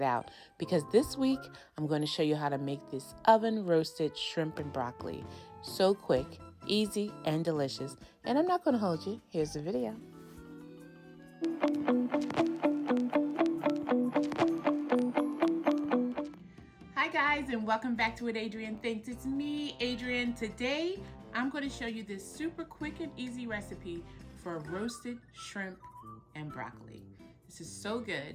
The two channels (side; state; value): both; identical; correlation 1.00